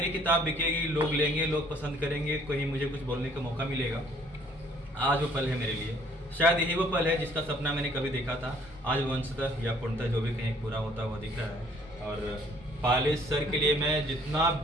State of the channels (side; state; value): both; normal; correlation 0.60